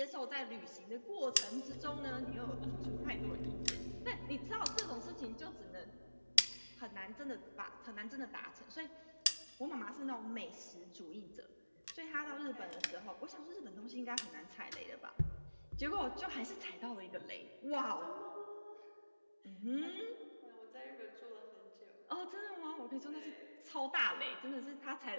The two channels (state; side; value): inverted; both; correlation -1.00